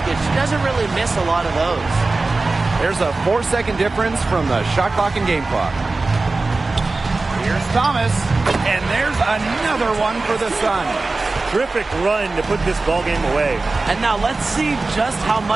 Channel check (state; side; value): quieter; left; 3.5 dB